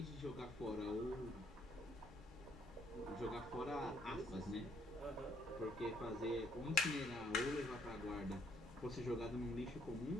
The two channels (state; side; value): normal; both; correlation 0.68